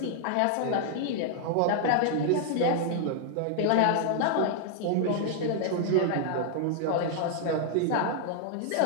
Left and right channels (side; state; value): both; different; correlation 0.00